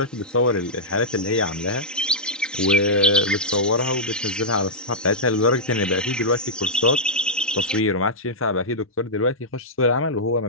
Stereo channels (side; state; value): both; normal; correlation -0.09